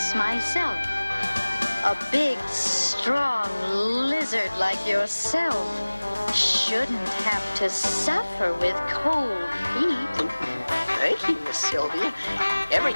myself. A big, strong lizard like yourself shouldn't have to suffer with cold feet. Thank you, Miss Sylvia. Every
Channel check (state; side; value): inverted; both; correlation -1.00